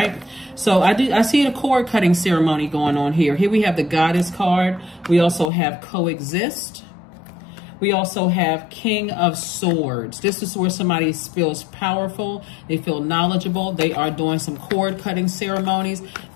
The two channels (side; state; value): right; drops out; at 5.5 s